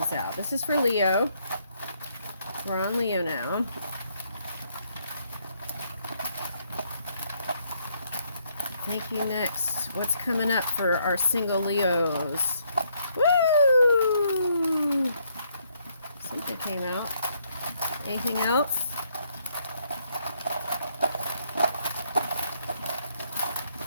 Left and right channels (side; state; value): both; inverted; correlation -0.72